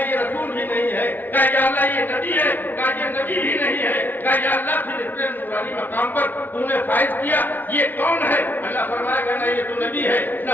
یہ رسول بھی نہیں ہے۔ کہا یا اللہ یہ نبی ہے؟ کہا یہ نبی بھی نہیں ہے۔ کہا یا اللہ پھر اتنے نورانی مقام پر تو نے فائز کیا، یہ کون ہے؟ اللہ فرمائے گا نہ یہ تو نبی ہے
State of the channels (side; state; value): right; late; 0.087 ms